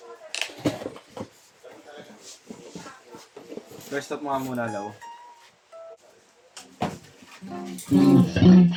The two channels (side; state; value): both; identical; correlation 1.00